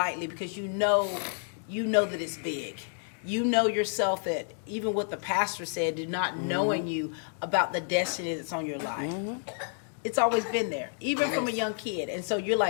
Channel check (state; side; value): silent; right; 58 dB below the other